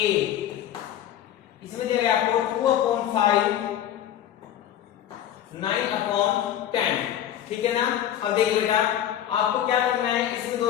इसमें दिया गया आपको 2/5 9/10। ठीक है ना। अब देखिए बेटा आपको क्या करना है, इसमें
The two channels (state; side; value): quieter; right; 11.1 dB